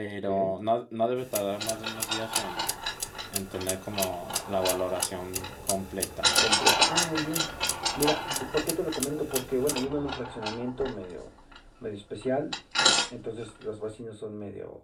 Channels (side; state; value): both; identical; correlation 1.00